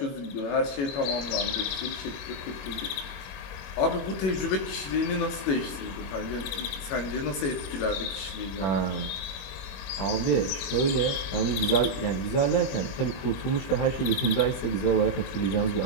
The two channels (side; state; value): right; late; 22 ms